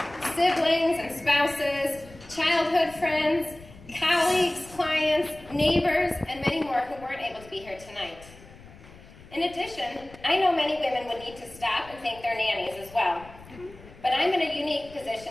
siblings and spouses, childhood friends, colleagues, clients, neighbors, and many more who weren't able to be here tonight. In addition, I know many women would need to stop and thank their nannies as well. But I'm in a unique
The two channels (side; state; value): left; noise; rumble, 21 dB below the sound